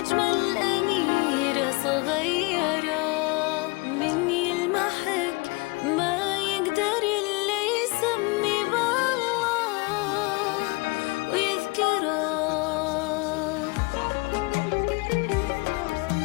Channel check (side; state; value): right; quieter; 26.9 dB